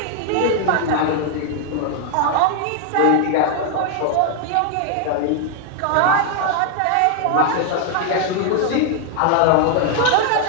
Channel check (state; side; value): different; both; correlation 0.00